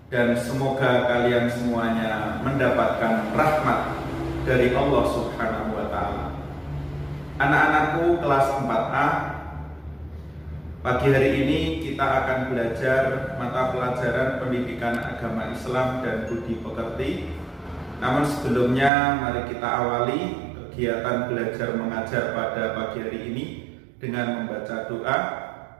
dan semoga kalian semuanya mendapatkan rahmat dari Allah Subhanahu wa Ta'ala. Anak-anakku kelas 4A, pagi hari ini kita akan belajar mata pelajaran pendidikan agama Islam dan budi pekerti. Namun sebelumnya mari kita awali kegiatan belajar mengajar pada pagi hari ini dengan membaca doa.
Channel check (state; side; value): drops out; left; at 18.9 s